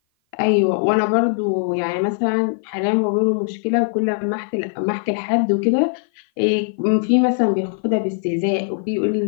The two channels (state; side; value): silent; right; 55 dB below the other